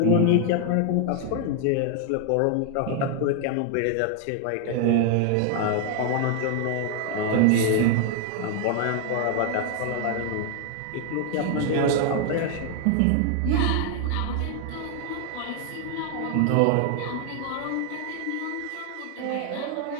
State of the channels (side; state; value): both; different; correlation 0.00